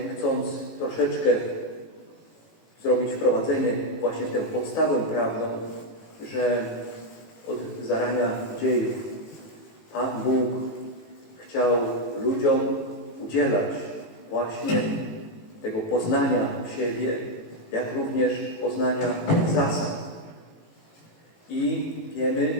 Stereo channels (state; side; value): late; right; 18 ms